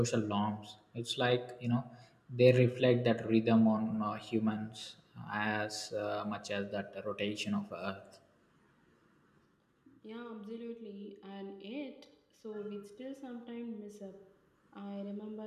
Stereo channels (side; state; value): both; identical; correlation 1.00